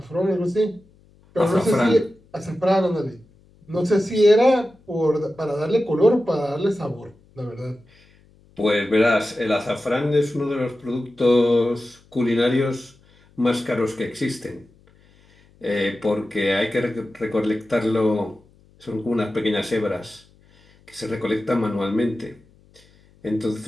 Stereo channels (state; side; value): noise; left; hum, 30 dB below the sound